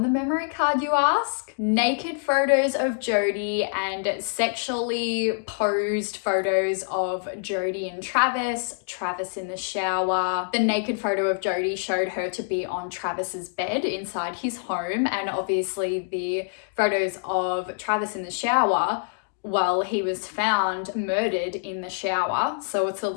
the memory card, you ask? Naked photos of Jodi and sexually posed photos of Jodi and Travis, Travis in the shower. The naked photo of Jodi showed her to be on Travis's bed inside his home, and obviously the photos of Travis in the shower, well, he was found murdered in the shower, so it's a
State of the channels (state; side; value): silent; right; digital silence